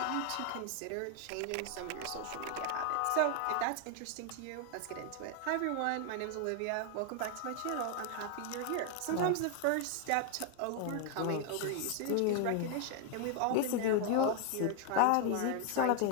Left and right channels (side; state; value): both; different; correlation 0.00